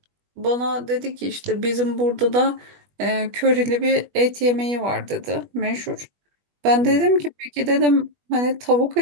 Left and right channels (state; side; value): late; left; 21 ms